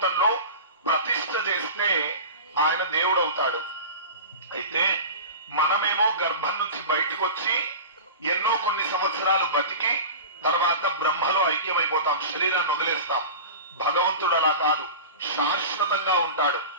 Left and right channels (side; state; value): both; inverted; correlation -0.31